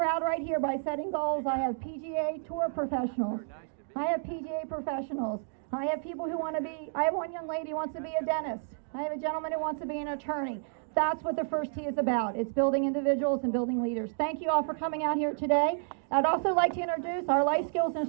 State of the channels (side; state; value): left; silent; digital silence